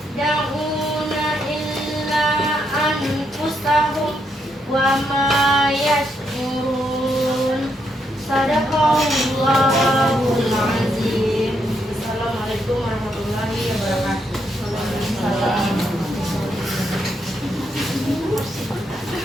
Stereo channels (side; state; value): both; normal; correlation 0.78